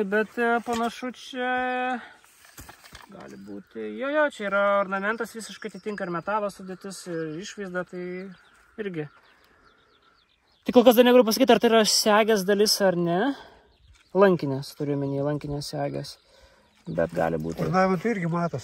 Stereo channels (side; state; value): both; identical; correlation 1.00